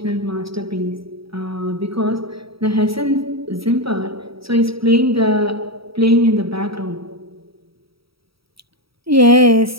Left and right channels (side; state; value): left; late; 0.76 ms